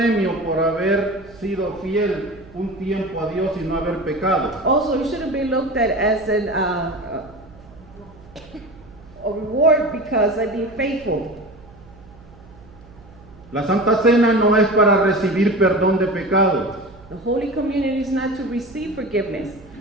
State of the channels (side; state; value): right; noise; hum, 23 dB below the sound